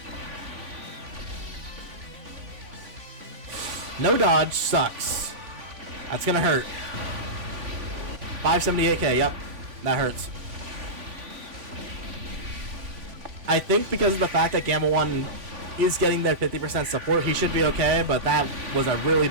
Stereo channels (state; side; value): late; left; 3.5 ms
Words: no dodge sucks. That's gonna hurt. 578k, yep. That hurts. I think because of the fact that Gamma 1 is getting their 50% support, he should be okay, but that was a really